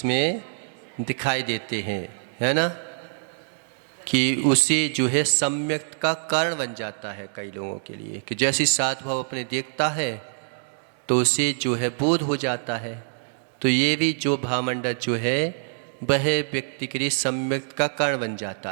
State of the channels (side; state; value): left; silent; digital silence